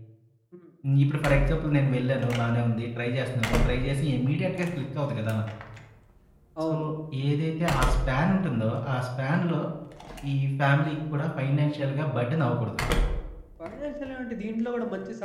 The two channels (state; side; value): identical; both; correlation 1.00